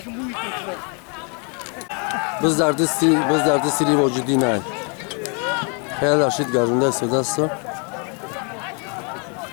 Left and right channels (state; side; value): quieter; right; 36.3 dB